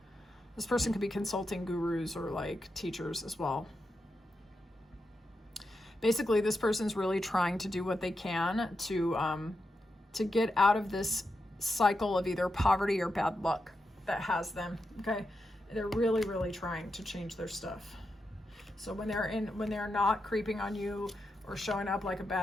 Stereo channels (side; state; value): both; normal; correlation 0.87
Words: This person could be consulting gurus or like teachers as well. Basically, this person's really trying to do what they can to get out of this cycle of either poverty or bad luck that has them. Okay. They're really, really trying to change their stuff. So when they're not creeping on you or showing up like a